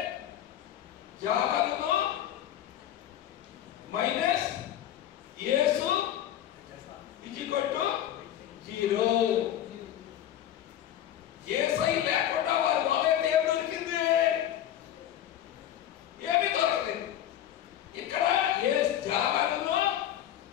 జాలమును మైనస్ యేసు ఇజికొట్టు 0. యేసై లేకుండా వారి వాళ్ళైతే ఏం దొరికింది? ఏమీ దొరకలేదు. ఇక్కడ జాలమును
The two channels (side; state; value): right; quieter; 11.4 dB